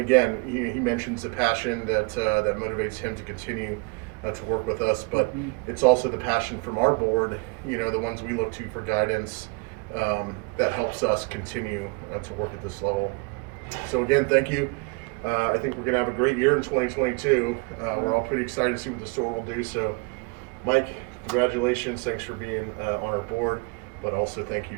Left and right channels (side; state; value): left; quieter; 31.7 dB